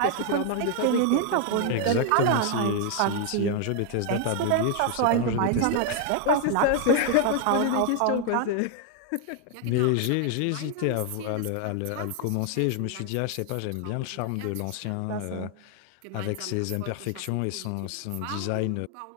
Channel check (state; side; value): different; both; correlation 0.00